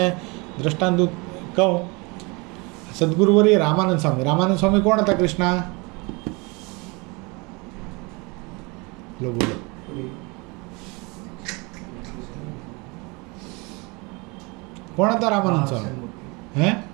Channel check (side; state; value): left; quieter; 27.9 dB